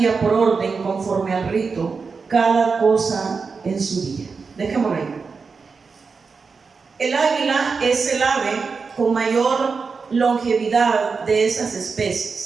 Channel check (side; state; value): left; quieter; 4.9 dB